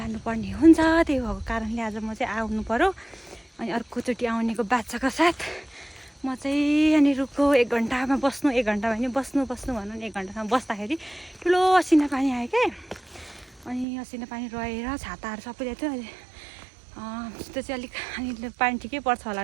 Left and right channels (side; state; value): left; drops out; at 13.9 s